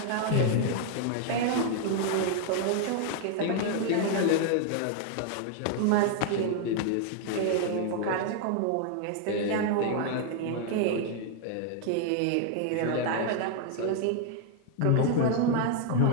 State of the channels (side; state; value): both; different; correlation 0.00